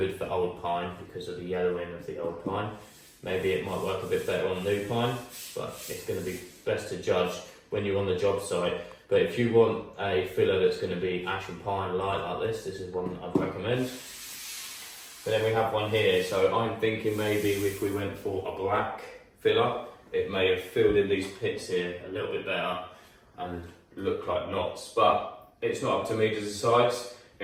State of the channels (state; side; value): identical; both; correlation 1.00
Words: for old pine because of the yellowing of the old pine. Maybe it might work a bit better on new pine, but it's going to be best to judge when you're on the job site. But if you want a filler that's going to be ash and pine light like this is one that I'd recommend. But then we have one here, so I'm thinking maybe if we went for a black filler, it may have filled in these pits here a little bit better and look like knots, but it's not up to me to decide.